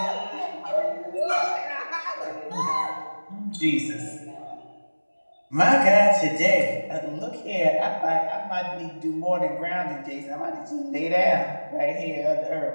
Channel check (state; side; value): inverted; both; correlation -1.00